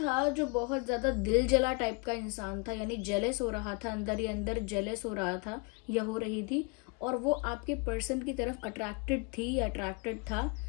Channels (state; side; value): quieter; right; 31.0 dB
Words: जो बहुत ज़्यादा दिल जला टाइप का इंसान था, यानी जेलस हो रहा था, अंदर ही अंदर जेलस हो रहा था या हो रही थी, और वो आपके पर्सन की तरफ अट्रैक्टेड थी या अट्रैक्टेड था।